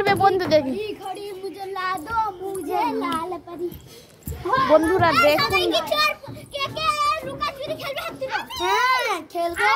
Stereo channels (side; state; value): both; identical; correlation 1.00